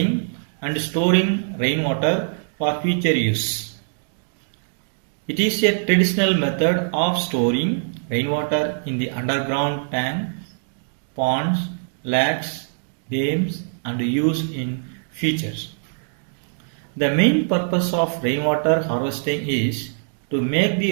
and storing rainwater for future use. It is a traditional method of storing rainwater in the underground tank, ponds, lakes, dams and use in futures. The main purpose of rainwater harvesting is to make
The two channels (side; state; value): left; silent; digital silence